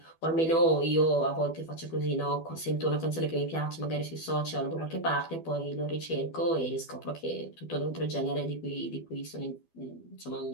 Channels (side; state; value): right; late; 12 ms